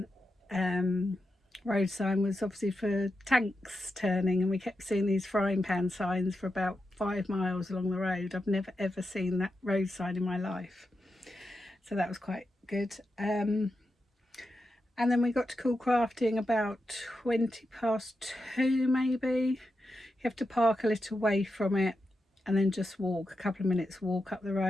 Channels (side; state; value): both; normal; correlation 0.88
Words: road sign was obviously for tanks turning, and we kept seeing these frying pan signs for about 5 miles along the road. I've never ever seen that road sign in my life, so that was quite good. And then we got to Coolcrafting about 2:20 maybe. You have to park a little way from it and then just walk a couple of minutes walk up the